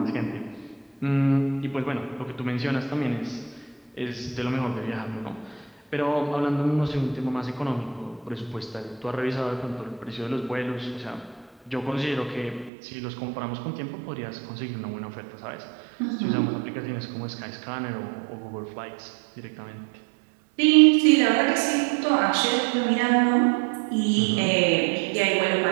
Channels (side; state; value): left; drops out; at 12.7 s